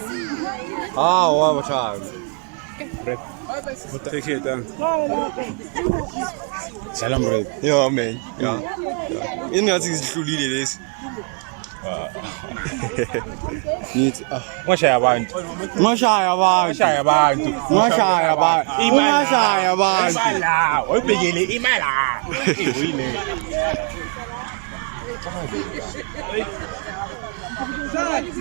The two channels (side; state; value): left; quieter; 38.3 dB